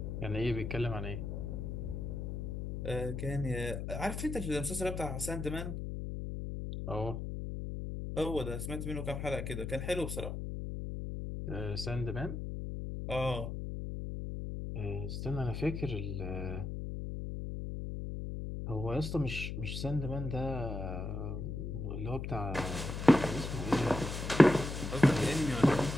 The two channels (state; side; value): noise; left; hum, 5 dB below the sound